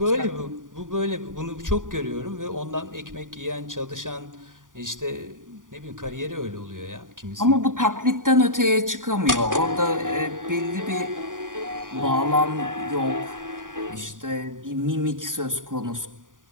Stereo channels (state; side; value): late; left; 0.88 ms